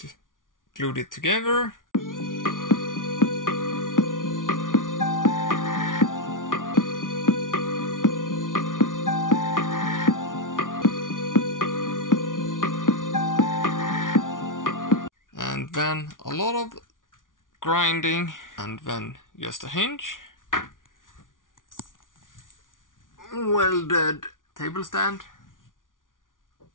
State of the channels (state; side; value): late; right; 0.88 ms